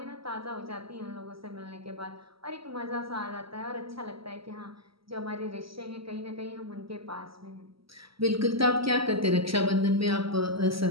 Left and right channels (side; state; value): left; late; 0.75 ms